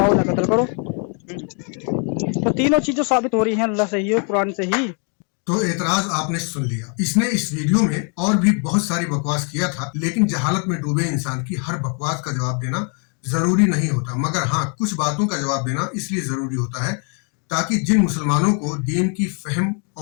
ना कत्ल करो। तो तीनों चीजें साबित हो रही हैं अल्लाह से ही और कुरान से ही। तो एतराज आपने सुन लिया। इसने इस वीडियो में और भी बहुत सारी बकवास किया था, लेकिन जहालत में डूबे इंसान की हर बकवास का जवाब देना जरूरी नहीं होता, मगर हाँ, कुछ बातों का जवाब देना इसलिए जरूरी होता है ताकि जिन मुसलमानों को दीन की फहम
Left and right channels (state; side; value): quieter; right; 39.7 dB